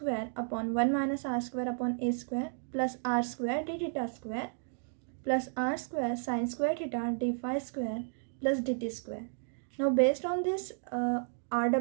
upon 1 minus r square upon a square plus r square d theta square plus r square sine square theta d phi square plus dt square. Now based on this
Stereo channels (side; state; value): left; silent; digital silence